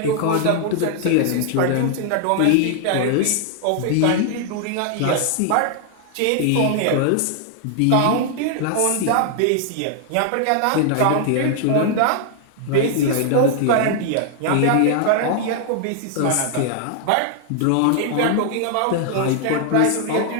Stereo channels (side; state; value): both; different; correlation 0.00